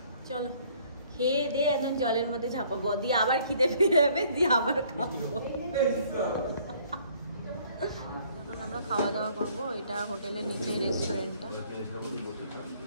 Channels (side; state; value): both; inverted; correlation -0.60